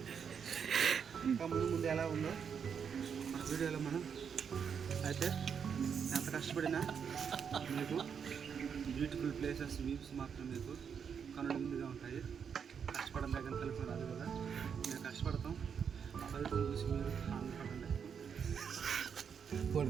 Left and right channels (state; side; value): quieter; left; 7.1 dB